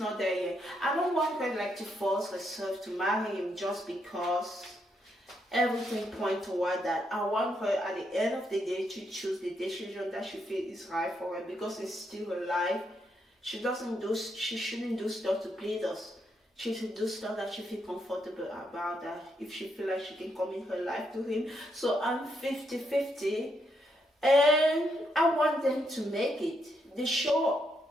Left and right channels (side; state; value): both; normal; correlation 0.78